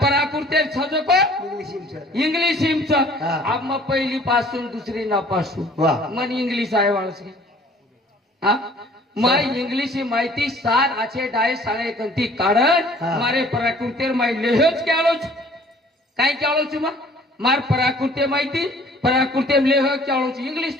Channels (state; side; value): normal; both; correlation 0.53